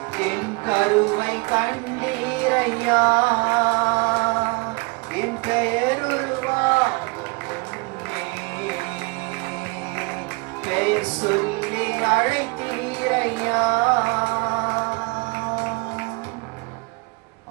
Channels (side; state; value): left; quieter; 29.1 dB